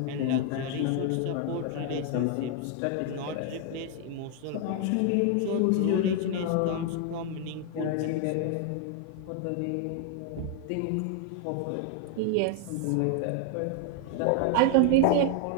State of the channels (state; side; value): different; both; correlation 0.00